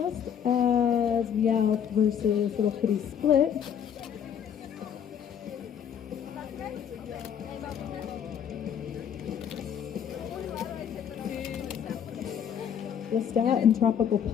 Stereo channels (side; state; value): right; quieter; 8.5 dB